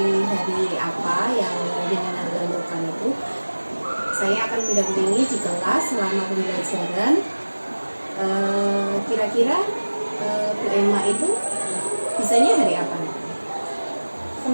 hari apa yang jenengan tentukan itu, saya akan mendampingi di kelas selama pembelajaran. Kira-kira Bu Emma itu bisanya hari apa?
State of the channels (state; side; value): inverted; both; correlation -1.00